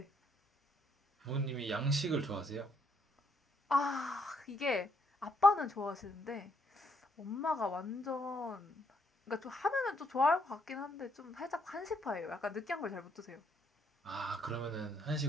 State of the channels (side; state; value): both; normal; correlation 0.72